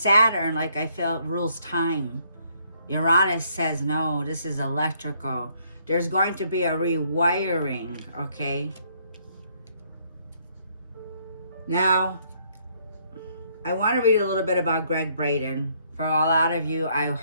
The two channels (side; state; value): both; inverted; correlation -0.68